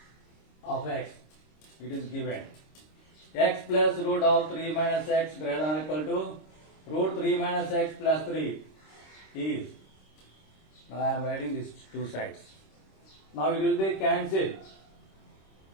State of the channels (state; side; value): late; right; 26 ms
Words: of x, it is given. X plus root of 3 minus x greater than or equal to root 3 minus x plus 3 is. Now I am writing these two sides. Now it will be cancelled.